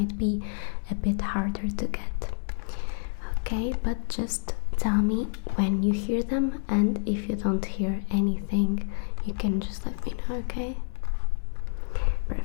be a bit harder to get, okay? But just tell me when you hear them, and if you don't hear anything, you can just let me know, okay?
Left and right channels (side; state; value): right; silent; digital silence